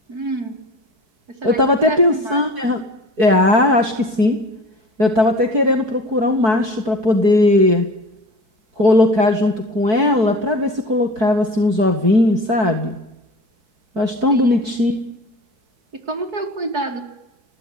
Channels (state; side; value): late; left; 4.6 ms